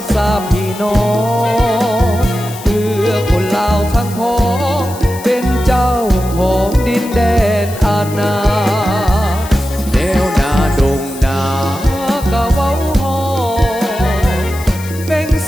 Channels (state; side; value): noise; left; hiss, 15 dB below the sound